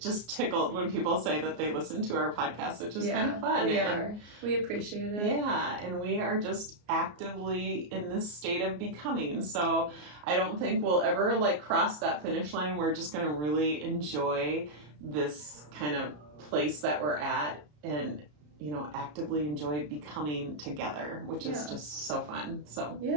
just tickled when people say that they listen to our podcast, which is kind of fun. We appreciate it. Yeah, and we are just actively in this state of becoming. So I don't think we'll ever like cross that finish line. We're just going to really enjoy this kind of place that we're at, and actively enjoy becoming together, which is just so fun. So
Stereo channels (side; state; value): left; late; 34 ms